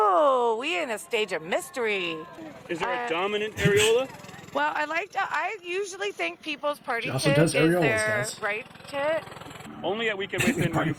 we in a stage of mystery. Is there a dominant areola? Well, I usually think people's party She also tit does is areolas, their guys. right tit. Only at Weekend Wasteland will you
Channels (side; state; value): both; identical; correlation 1.00